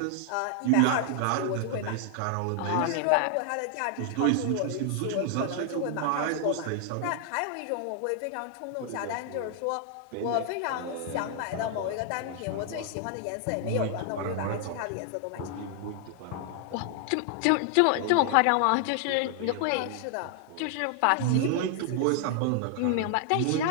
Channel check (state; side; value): different; both; correlation 0.00